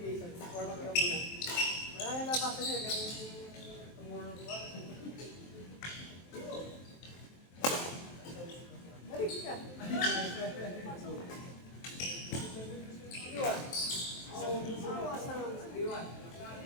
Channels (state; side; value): late; right; 23 ms